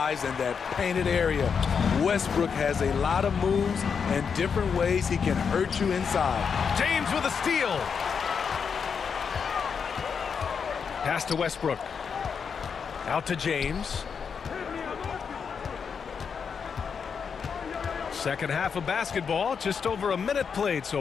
in that painted area. Westbrook has a lot of moves and different ways he can hurt you inside. James with a steal. Pass to Westbrook. Out to James. Second half of basketball, just over a minute played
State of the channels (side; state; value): right; quieter; 6.3 dB